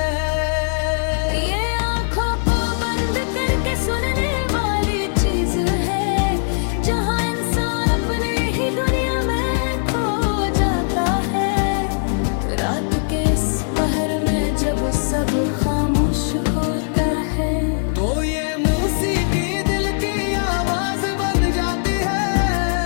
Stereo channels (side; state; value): right; silent; 57 dB below the other